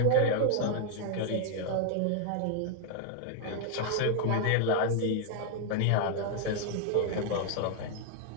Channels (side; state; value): both; different; correlation 0.00